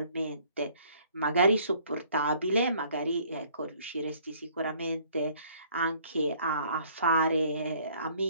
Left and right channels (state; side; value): inverted; both; correlation -0.59